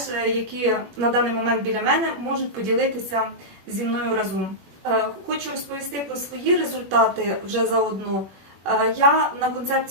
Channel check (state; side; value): late; left; 21 ms